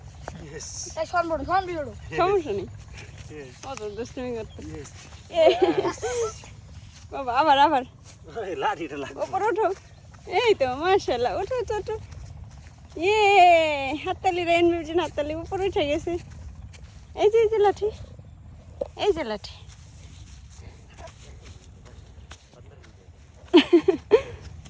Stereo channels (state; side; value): identical; both; correlation 1.00